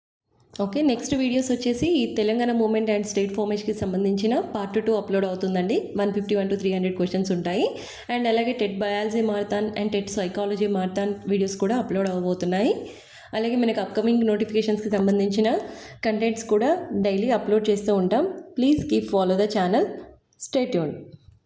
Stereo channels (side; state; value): both; identical; correlation 1.00